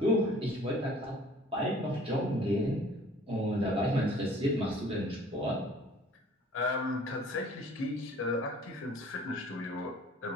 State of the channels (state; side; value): normal; both; correlation 0.51